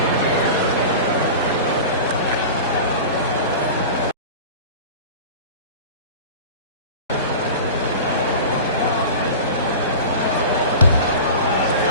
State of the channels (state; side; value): inverted; both; correlation -0.33